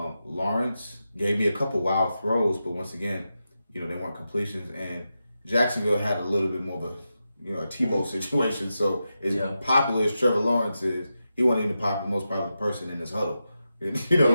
gave me a couple wild throws, but once again, they weren't completions. And Jacksonville had a little bit more of a Tebow situation. So as popular as Trevor Lawrence is, he wasn't even the most popular person in this huddle.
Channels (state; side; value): inverted; both; correlation -0.89